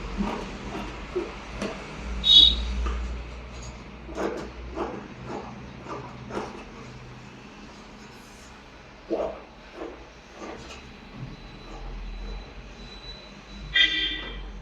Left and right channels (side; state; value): both; identical; correlation 1.00